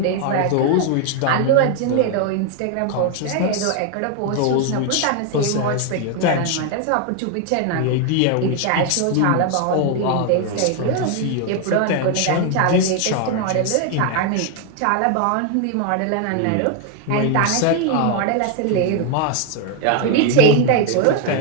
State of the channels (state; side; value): different; both; correlation 0.01